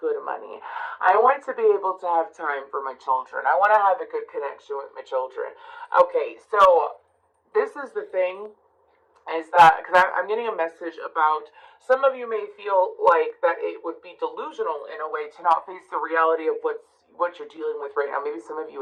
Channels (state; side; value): identical; both; correlation 1.00